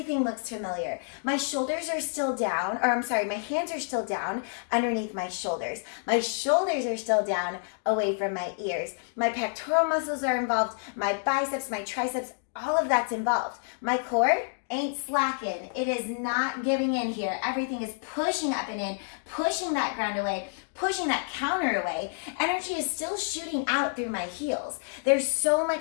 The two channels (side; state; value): right; silent; digital silence